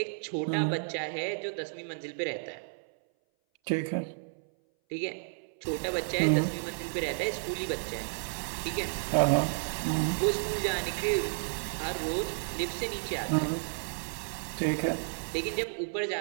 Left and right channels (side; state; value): left; silent; 57 dB below the other